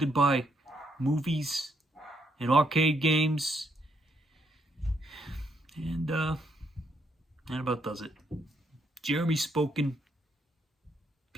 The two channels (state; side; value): normal; both; correlation 0.75